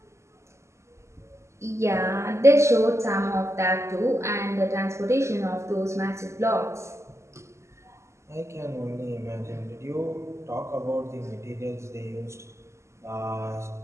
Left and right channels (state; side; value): late; left; 0.13 ms